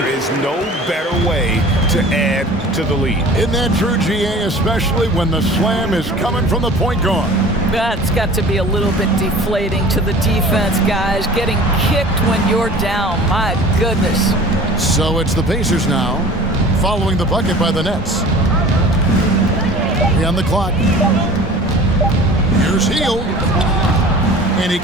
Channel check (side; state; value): both; normal; correlation 0.43